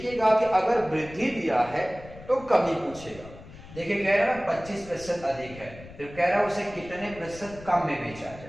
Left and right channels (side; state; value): left; noise; rumble, 17 dB below the sound